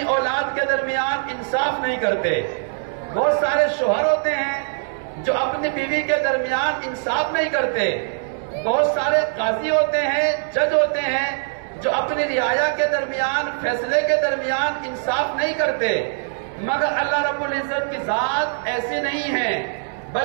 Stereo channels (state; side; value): silent; left; digital silence